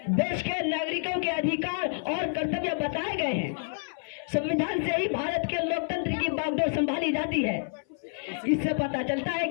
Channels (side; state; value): right; silent; 59 dB below the other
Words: देश के नागरिकों के अधिकार और कर्तव्य बताए गए हैं। संविधान से ही भारत के लोकतंत्र की बागडोर संभाली जाती है। इससे पता चलता है